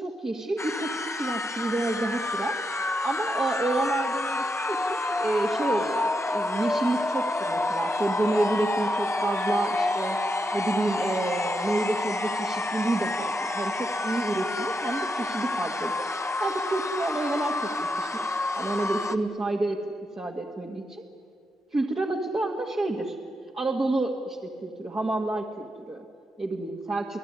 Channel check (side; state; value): both; normal; correlation 0.83